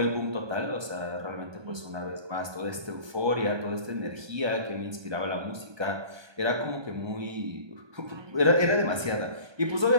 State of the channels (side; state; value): left; late; 1.2 ms